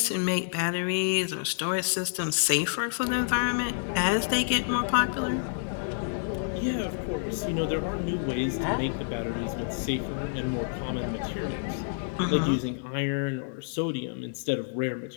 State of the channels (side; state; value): right; silent; digital silence